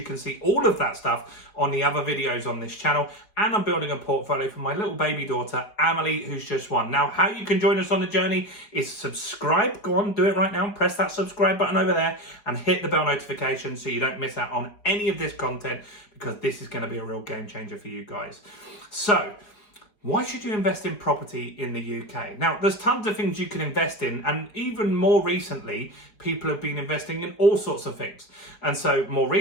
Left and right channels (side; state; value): right; late; 4.8 ms